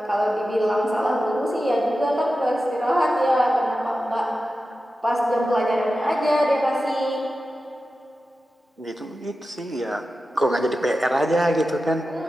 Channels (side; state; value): both; normal; correlation 0.93